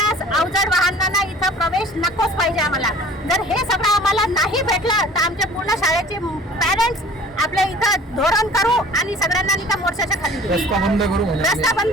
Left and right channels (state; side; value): normal; both; correlation 0.48